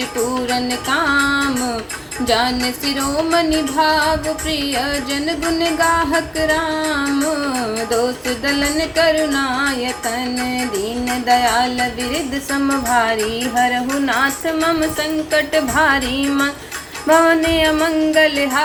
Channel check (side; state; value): both; identical; correlation 1.00